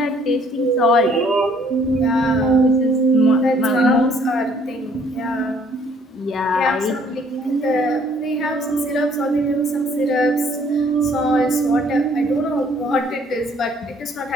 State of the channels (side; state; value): both; normal; correlation 0.61